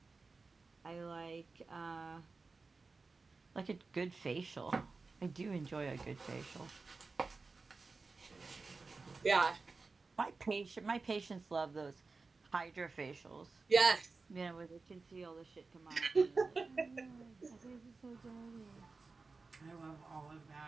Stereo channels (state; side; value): quieter; left; 4.0 dB